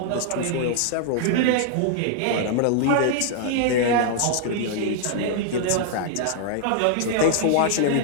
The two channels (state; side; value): different; both; correlation -0.01